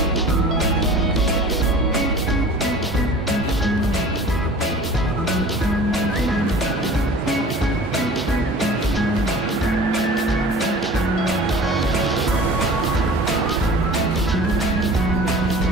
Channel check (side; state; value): both; normal; correlation 0.43